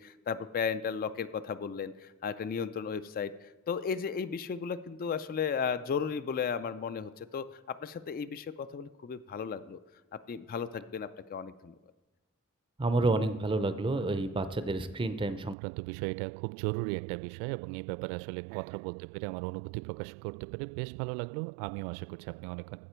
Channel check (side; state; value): left; drops out; at 15.6 s